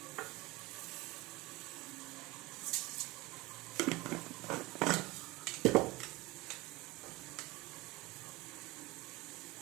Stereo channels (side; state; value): left; quieter; 21.4 dB